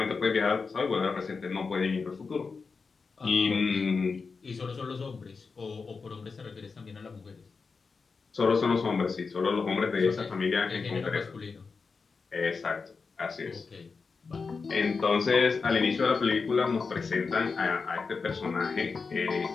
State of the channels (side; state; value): right; quieter; 4.8 dB